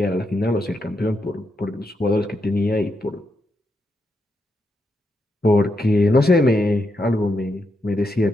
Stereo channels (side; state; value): both; normal; correlation 0.83